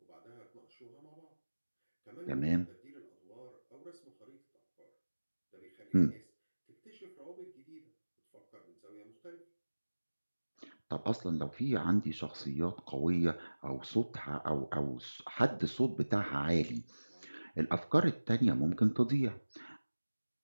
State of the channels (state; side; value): inverted; both; correlation -1.00